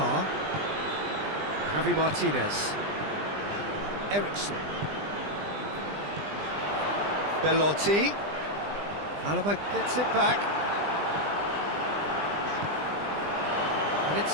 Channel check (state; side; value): late; left; 20 ms